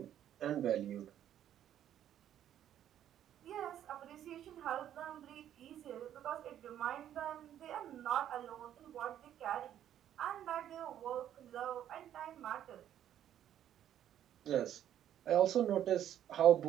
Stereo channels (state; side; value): quieter; left; 10.8 dB